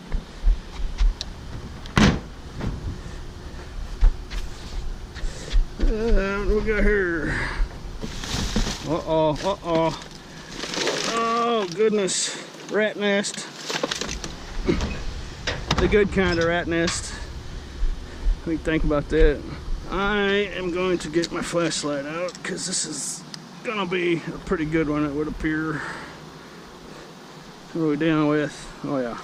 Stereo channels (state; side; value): identical; both; correlation 1.00